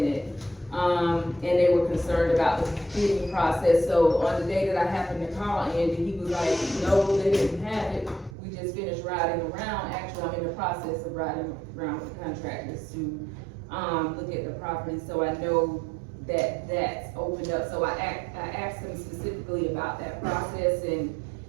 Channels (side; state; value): left; drops out; at 8.3 s